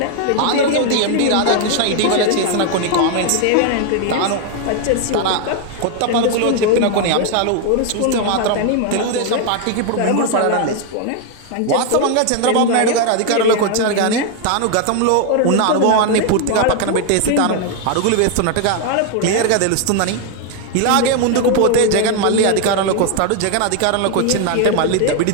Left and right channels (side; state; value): both; different; correlation 0.01